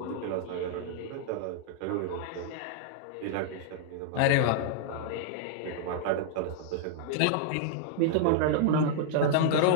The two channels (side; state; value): both; different; correlation -0.01